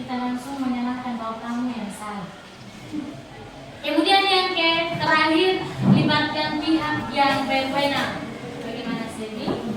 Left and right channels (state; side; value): identical; both; correlation 1.00